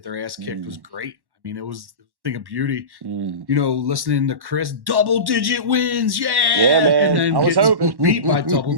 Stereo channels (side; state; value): left; late; 1.1 ms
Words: their ass kicked was great. I mean, it was a thing of beauty, listening to Chris, double-digit wins, yeah, man. And then I was hoping. beat by double